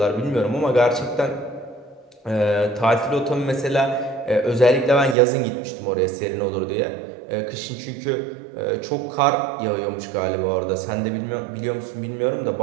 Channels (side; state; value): left; drops out; at 5.2 s